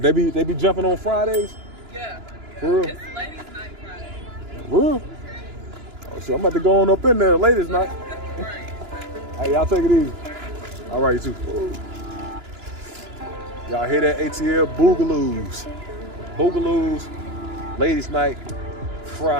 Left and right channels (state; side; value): late; left; 2.9 ms